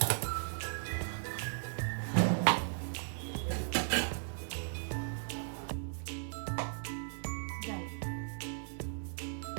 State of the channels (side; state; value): left; silent; 53 dB below the other